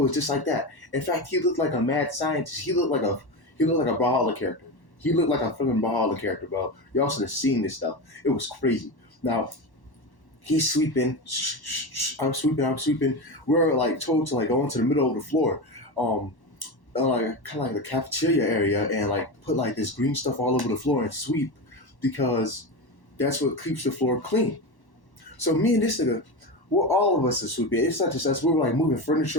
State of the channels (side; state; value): right; late; 1.1 ms